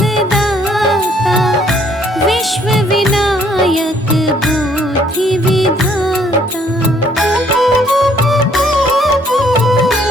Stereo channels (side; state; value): both; normal; correlation 0.64